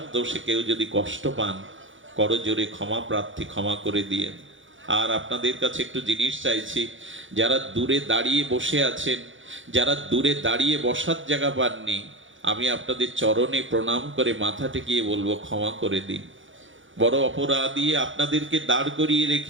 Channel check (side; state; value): left; late; 0.56 ms